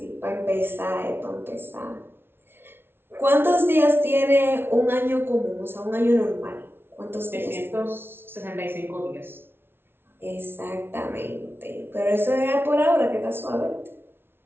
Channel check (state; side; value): late; left; 0.11 ms